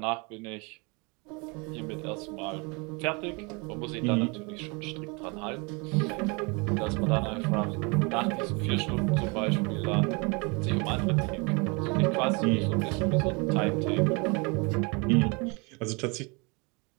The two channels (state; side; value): quieter; left; 29.9 dB